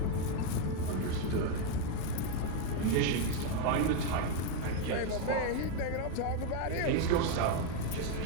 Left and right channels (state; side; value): different; both; correlation 0.01